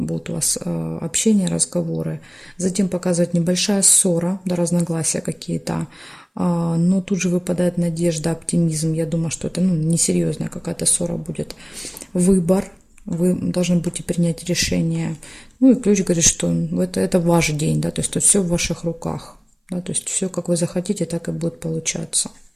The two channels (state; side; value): identical; both; correlation 1.00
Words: у вас общение, разговоры. Затем показывает небольшая ссора, да, разногласия какие-то. Но тут же выпадает надежда, оптимизм. Я думаю, что это несерьезная какая-то ссора будет. Выбор. Вы должны будете принять решение. Ну и ключ говорит, что это ваш день, да, то есть тут все в ваших руках. Да, то есть все, как вы захотите, так и будет получаться.